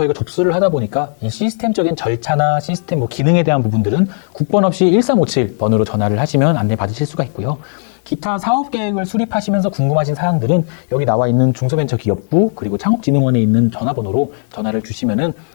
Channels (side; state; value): right; silent; digital silence